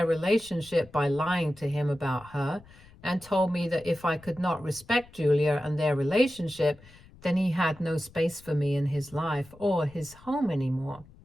relationship by lying to him about her. and told me that if I could not respect Julia and their relationship, then he had no space for me in his life or his home anymore.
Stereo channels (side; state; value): left; noise; rumble, 23 dB below the sound